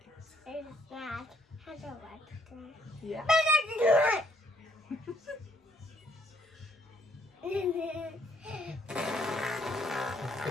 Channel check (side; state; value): both; normal; correlation 0.69